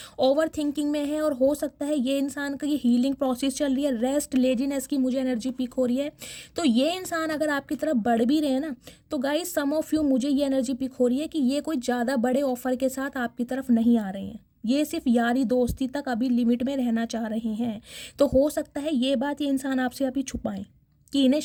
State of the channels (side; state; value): both; identical; correlation 1.00